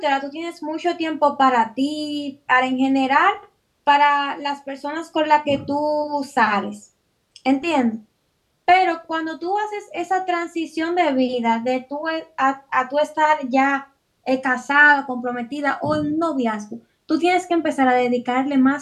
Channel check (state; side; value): identical; both; correlation 1.00